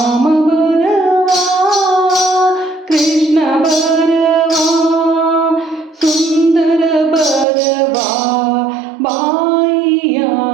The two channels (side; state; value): left; drops out; at 7.5 s